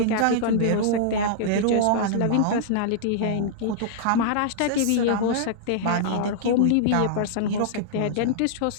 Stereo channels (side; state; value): both; different; correlation -0.02